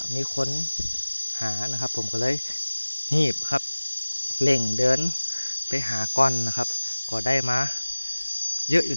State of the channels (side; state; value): both; inverted; correlation -1.00